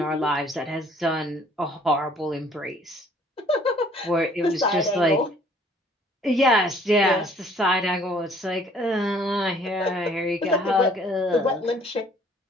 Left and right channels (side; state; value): both; normal; correlation 0.58